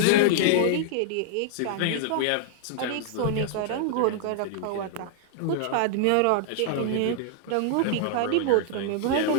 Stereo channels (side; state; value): both; different; correlation -0.01